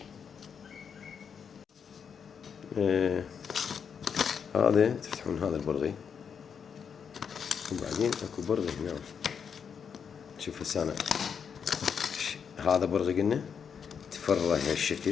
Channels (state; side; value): quieter; right; 6.9 dB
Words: هذا تفتحون هذا البرغي وبعدين اكو برغي هنا. شوف هسه أنا هذا برغي قلنا تفرع